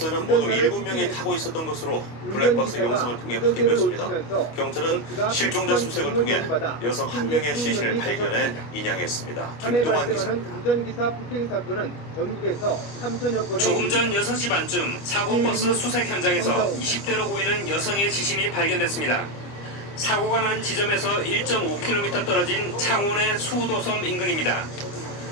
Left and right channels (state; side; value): late; right; 25 ms